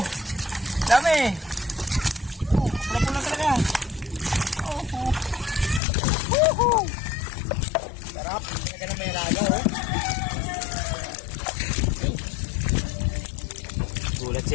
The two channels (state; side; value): drops out; right; at 5.8 s